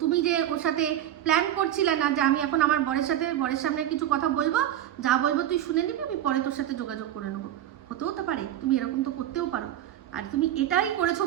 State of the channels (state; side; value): quieter; left; 11.8 dB